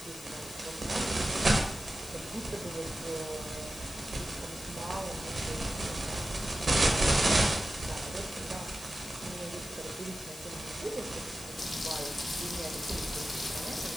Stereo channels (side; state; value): left; noise; hiss, 14 dB below the sound